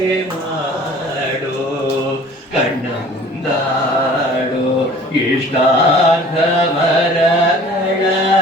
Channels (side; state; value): both; normal; correlation 0.48